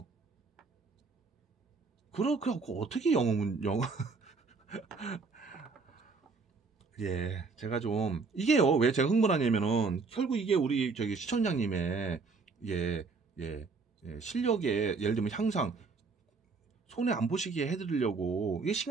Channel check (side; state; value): left; quieter; 4.4 dB